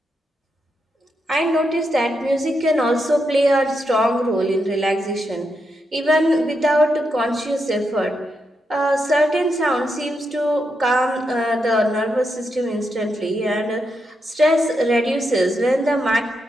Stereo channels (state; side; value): normal; both; correlation 0.83